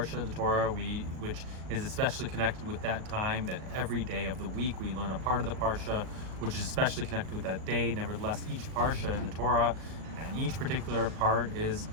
of the Torah, which is especially connected with that time, that every day of the week we learn a part of the Parsha, which is especially connected with that day. Nevertheless, each Parsha in the Torah and each particular part is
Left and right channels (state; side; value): late; left; 38 ms